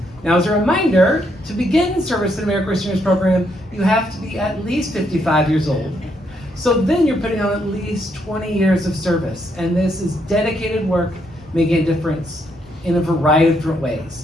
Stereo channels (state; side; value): normal; both; correlation 0.75